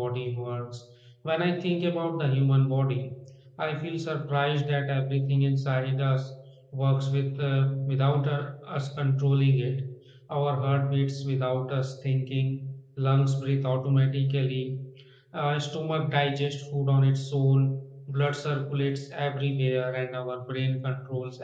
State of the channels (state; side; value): identical; both; correlation 1.00